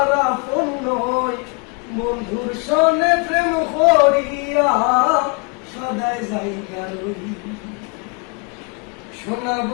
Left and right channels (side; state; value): right; quieter; 33.4 dB